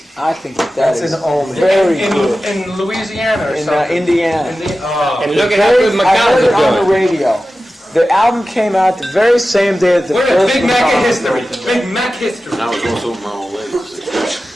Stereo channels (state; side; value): normal; both; correlation 0.94